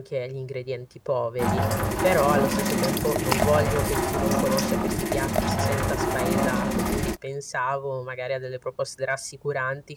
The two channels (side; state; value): both; identical; correlation 1.00